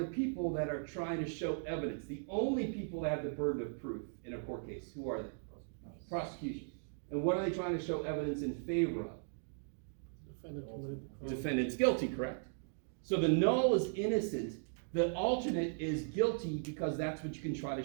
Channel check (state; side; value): silent; left; digital silence